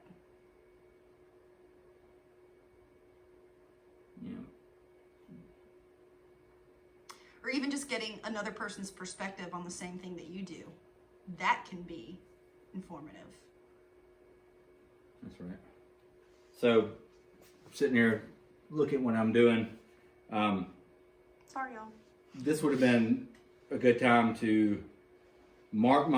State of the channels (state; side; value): identical; both; correlation 1.00